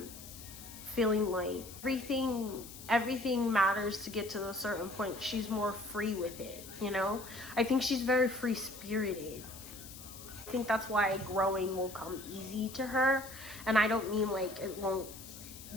feeling like everything matters to get to a certain point. She's more free with it, you know? I think she's very free-spirited. I think that's why growing will come easy to her. And I don't mean like it won't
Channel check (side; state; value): left; noise; hiss, 15 dB below the sound